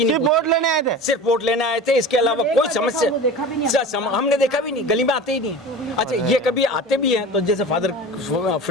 नहीं। सिर्फ वोट लेने आए थे, सिर्फ वोट लेने आए थे, इसके अलावा कोई समस्या हमने देखा भी नहीं, गली में आते ही नहीं। अच्छा ये कभी आते भी हैं तो जैसे फादर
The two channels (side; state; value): both; normal; correlation 0.34